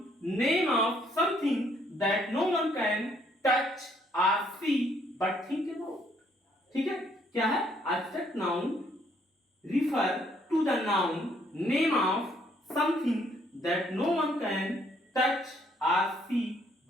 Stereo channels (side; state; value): both; normal; correlation 0.67